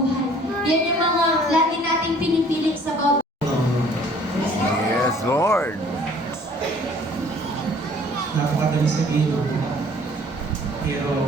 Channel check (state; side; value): normal; both; correlation 0.55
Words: Yan yung mga lagi nating pinipili sa bawat. Yes, Lord. Napakadali sabihin,